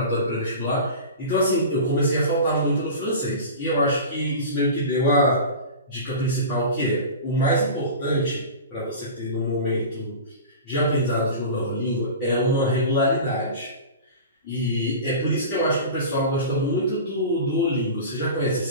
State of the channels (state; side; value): inverted; both; correlation -0.32